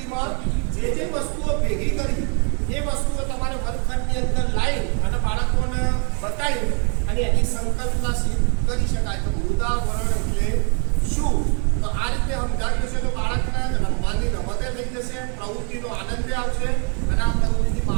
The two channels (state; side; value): quieter; left; 38.4 dB